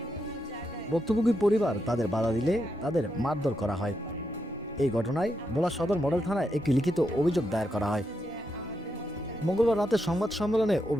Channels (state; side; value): normal; both; correlation 0.83